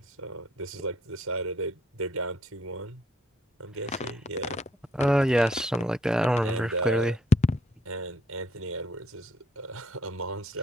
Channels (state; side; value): normal; both; correlation 0.66